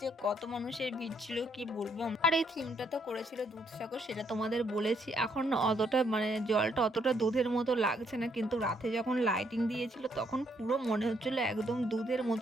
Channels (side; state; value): both; normal; correlation 0.72